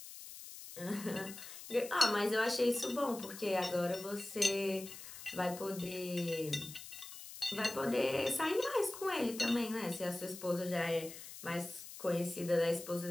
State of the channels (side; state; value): left; noise; hiss, 13 dB below the sound